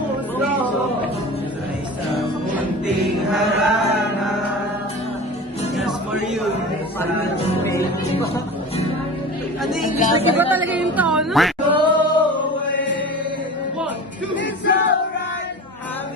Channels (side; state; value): both; normal; correlation 0.35